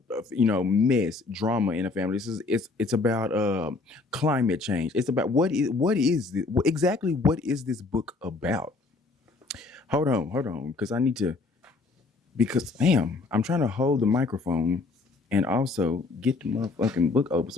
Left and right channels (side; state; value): right; quieter; 3.8 dB